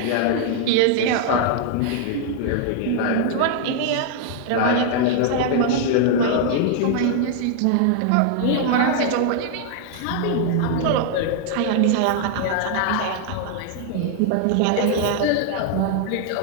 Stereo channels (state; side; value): different; both; correlation 0.00